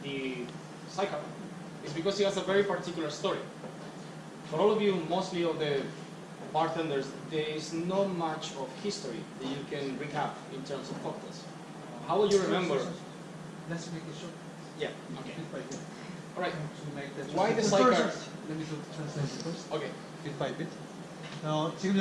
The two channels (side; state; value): both; identical; correlation 1.00